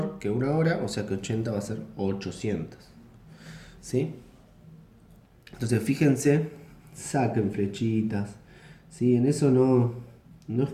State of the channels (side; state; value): both; identical; correlation 1.00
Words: que una hora. O sea que 80 va a ser 800. ¿Sí? Entonces fíjense, saquen flechitas. ¿Sí? En eso no